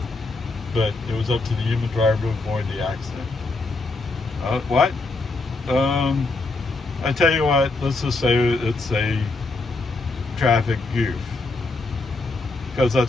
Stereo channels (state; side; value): quieter; right; 3.4 dB